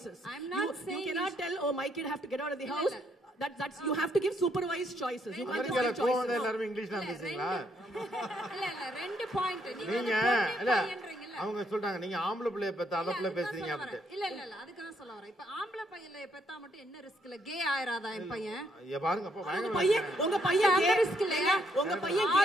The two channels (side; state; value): both; normal; correlation 0.73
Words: I'm not saying you cannot tell, oh my kid have to get out of the house. That's you have to give supervised choices. You can't just give choices. எல்லாரும் இங்கிலீஷ்ல பேசுறீங்களா? இல்ல ரெண்டு point நீங்க இல்ல அவங்க சொல்றாங்க நீங்க ஆம்பளை பிள்ளைய பெத்த அதப்ல பேசுறீங்க அப்படி. இல்ல அதுக்கு தான் சொல்ல வரேன். இப்ப ஆம்பளை பையல பெத்தா மட்டும் என்ன ரிஸ்க் இல்ல, கே ஆயிராதா என் பையன்? ஏ பாருங்க அப்ப உங்க பையன் கே ரிஸ்க் இல்லையா? உங்க பையன் கே